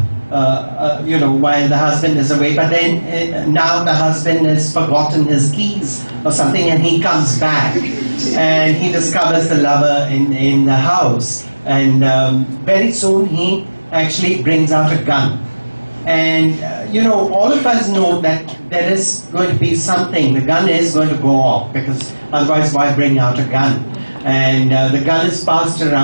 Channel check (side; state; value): both; inverted; correlation -1.00